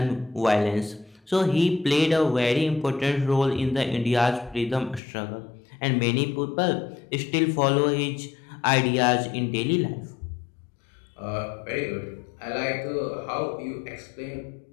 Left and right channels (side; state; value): right; drops out; at 5.0 s